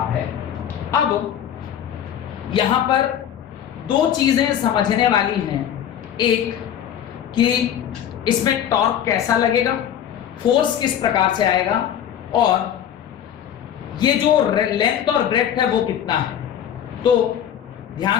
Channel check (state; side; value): quieter; right; 9.7 dB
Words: है। अब यहां पर दो चीजें समझने वाली हैं, एक कि इसमें टॉर्क कैसा लगेगा, फोर्स किस प्रकार से आएगा, और ये जो लेंथ और ब्रेड्थ है वो कितना है। तो